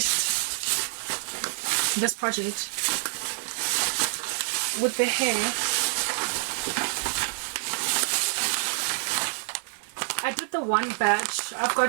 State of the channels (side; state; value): left; silent; digital silence